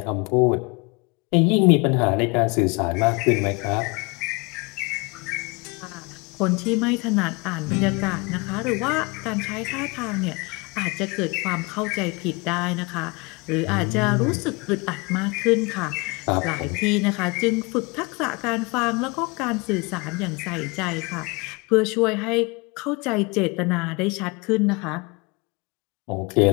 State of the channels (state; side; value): quieter; right; 27.6 dB